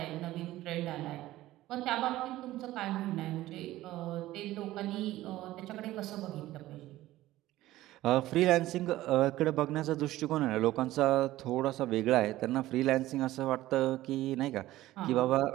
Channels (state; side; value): quieter; left; 15.9 dB